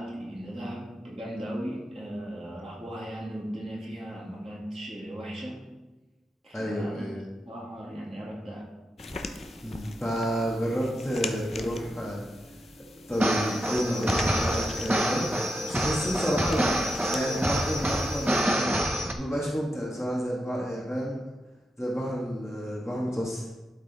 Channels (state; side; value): normal; both; correlation 0.86